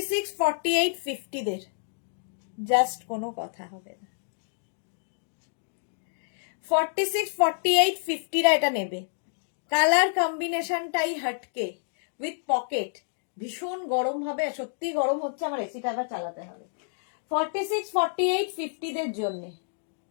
48 50 দের জাস্ট কোনো কথা হবে না। 46 48 50 রা এটা নেবে। কালার কম্বিনেশনটাই হটকে, উইথ পকেট, ভীষণ গরম হবে, সত্যি গরম হচ্ছে, আমার এসিটা আবার চালাতে হবে। 46 48 50 দের জন্য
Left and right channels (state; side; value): silent; right; digital silence